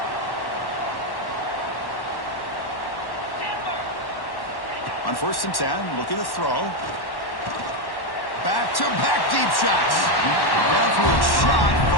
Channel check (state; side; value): late; right; 1.1 ms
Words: On 1st and 10, looking to throw. Back-to-back deep shots. Downfield shot